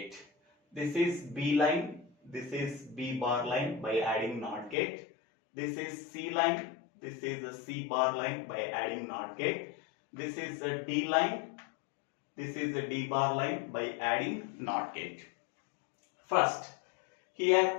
This is B line, this is B bar line by adding NOT gate. This is C line, this is a C bar line by adding NOT gate. This is a D line, this is a D bar line by adding NOT gate. First,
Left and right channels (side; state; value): right; drops out; at 4.8 s